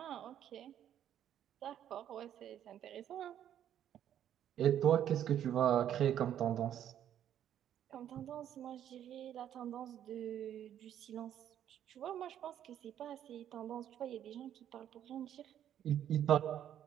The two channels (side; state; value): left; quieter; 10.5 dB